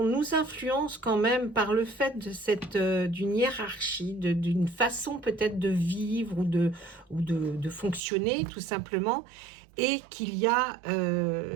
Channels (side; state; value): left; drops out; at 8.0 s